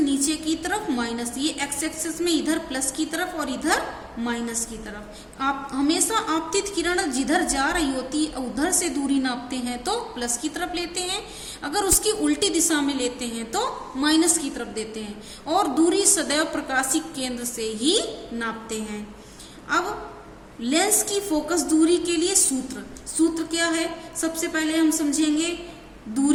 की तरफ माइनस। ये एक्स एक्सिस में इधर प्लस की तरफ और इधर माइनस की तरफ। आप हमेशा आपतित किरण जिधर जा रही होती है उधर से दूरी नापते हैं तो प्लस की तरफ लेते हैं, अगर उसकी उल्टी दिशा में लेते हैं तो माइनस की तरफ देते हैं, और दूरी सदैव प्रकाशिक केंद्र से ही नापते हैं। अब लेंस की फोकस दूरी के लिए सूत्र क्या है, सबसे पहले हम समझेंगे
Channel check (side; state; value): both; identical; correlation 1.00